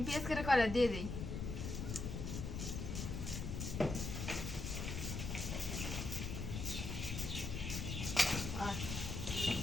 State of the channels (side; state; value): left; noise; rumble, 4 dB below the sound